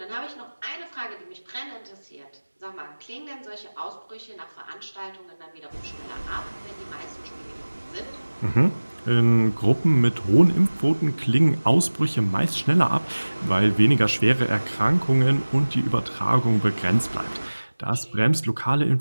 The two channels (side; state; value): both; inverted; correlation -1.00